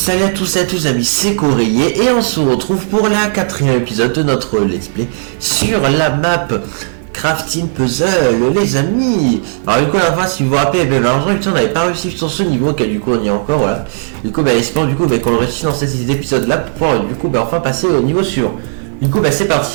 à tous amis, c'est Coréier et on se retrouve pour la 4e épisode de notre let's play sur la map Crafting Puzzle les amis. Alors du coup la fois si vous vous rappelez, malheureusement on n'avait pas réussi sur ce niveau car du coup on y est encore voilà. Du coup espérons qu'on le réussit dans cet épisode là pour pouvoir du coup enfin passer au niveau suivant. Du coup c'est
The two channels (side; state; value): left; silent; digital silence